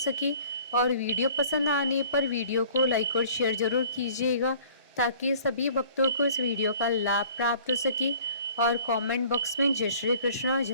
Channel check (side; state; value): both; inverted; correlation -0.51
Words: और वीडियो पसंद आने पर वीडियो को लाइक और शेयर जरूर कीजिएगा, ताकि सभी भक्तों को इस वीडियो का लाभ प्राप्त हो सके। और कमेंट बॉक्स में जय श्री कृष्णा